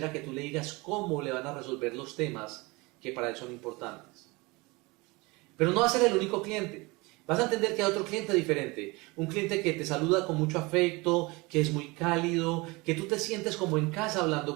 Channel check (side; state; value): left; quieter; 24.7 dB